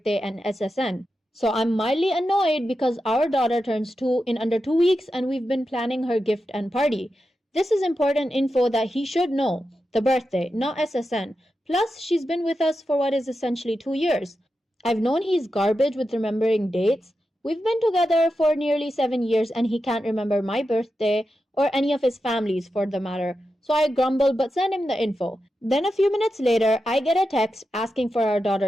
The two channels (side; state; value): both; normal; correlation 0.89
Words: and SSN. So I'm mildly annoyed because our daughter turns 2 in under 2 weeks and we've been planning her gift and party. This is important info that he should know. The birthday, not SSN. Plus, she's been with us for what is essentially 2 years. I've known he's garbage with remembering dates. We've been together for nearly 7 years and he can't remember my birthday or any of his family's for the matter. So I grumble but send him the info. Then a few minutes later, I get a text asking for our